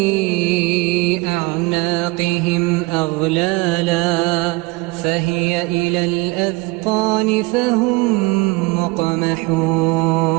أعناقهم أغلالا فهي إلى الأذقان فهم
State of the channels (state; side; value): quieter; left; 24.1 dB